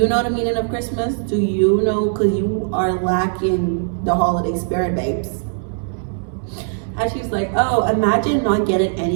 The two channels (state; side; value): silent; left; digital silence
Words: know the meaning of Christmas? Do you know? Because you are lacking the holiday spirit, babes. And she's like, oh, imagine not getting